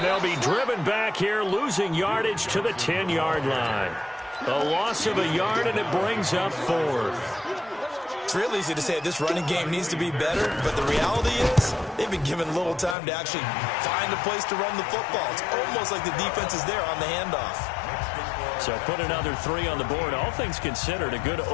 they'll be driven back here, losing yardage to the 10-yard line. A loss of a yard, and it brings up 4th. It's real easy to say this running game needs to be better, but the reality is they've been given little time to actually find a place to run the football. It's almost like the defense is there on the handoff. So put another 3 on the board. All things considered, a good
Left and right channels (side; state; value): right; drops out; at 13.0 s